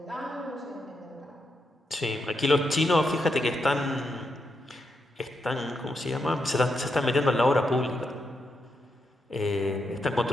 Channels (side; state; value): both; normal; correlation 0.83